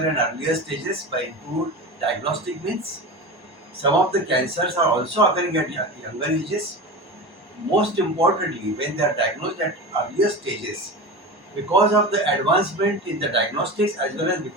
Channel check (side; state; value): left; late; 1.1 ms